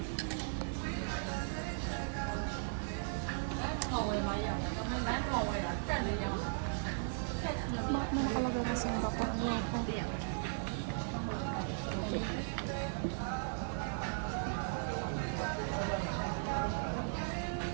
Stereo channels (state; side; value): silent; left; 53 dB below the other